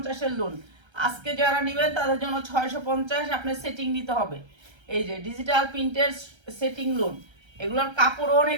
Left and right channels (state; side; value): late; left; 1.3 ms